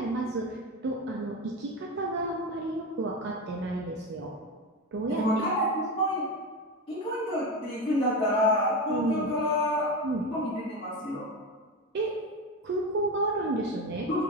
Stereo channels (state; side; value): normal; both; correlation 0.20